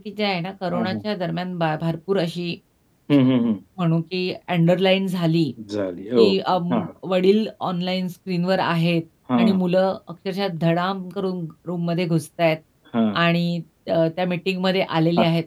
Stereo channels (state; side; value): identical; both; correlation 1.00